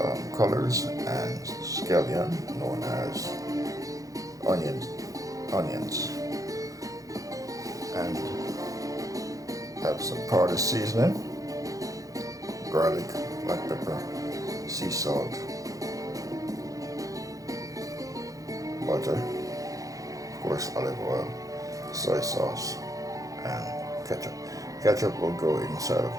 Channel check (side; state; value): left; late; 0.17 ms